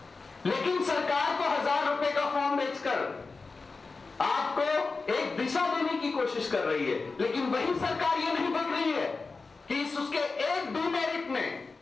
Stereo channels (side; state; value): right; quieter; 4.1 dB